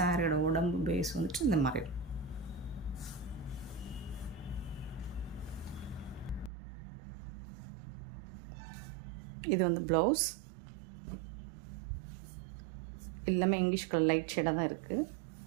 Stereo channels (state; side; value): drops out; left; at 6.5 s